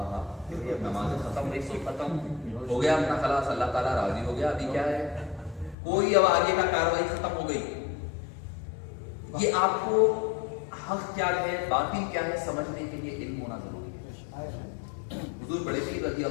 اب نمازیں ختم، ایک سو ختم ہو گیا اپنا خلاص، اللہ تعالیٰ راضی ہو گیا. ابھی کیا ہے، کوئی اب آگے کا کاروائی ختم ہو گئی. یہ آپ کو حق کیا ہے باطل کیا ہے سمجھنے کے لیے علم ہونا ضروری ہے. حضور بڑے پیر رضی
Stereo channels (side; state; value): right; drops out; at 5.8 s